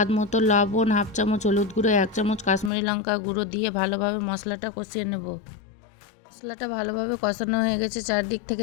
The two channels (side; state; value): right; drops out; at 2.7 s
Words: মতো লবণ, 1/2 চামচ হলুদ গুঁড়ো, 1 চামচ কাশ্মীরি লঙ্কা গুঁড়ো দিয়ে ভালোভাবে মশলাটা কষিয়ে নেব। মশলাটা ভালোভাবে কষানো হয়ে গেছে, চারদিক থেকে